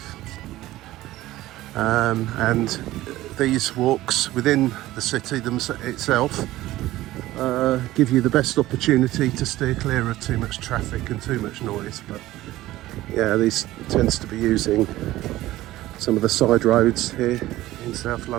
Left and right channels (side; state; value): left; quieter; 16.2 dB